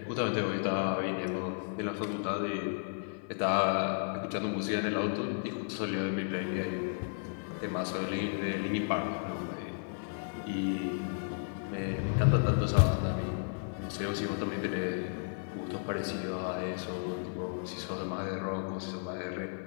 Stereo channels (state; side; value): silent; right; digital silence